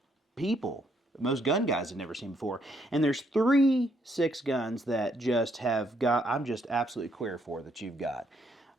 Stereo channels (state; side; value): normal; both; correlation 0.72